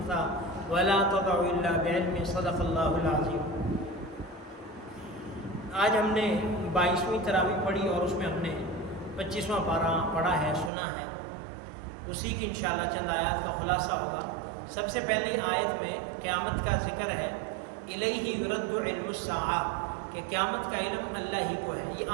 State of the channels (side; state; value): left; drops out; at 10.7 s